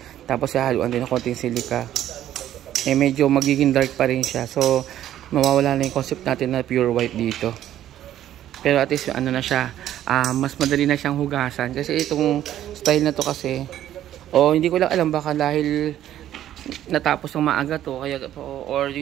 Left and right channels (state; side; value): quieter; left; 12.0 dB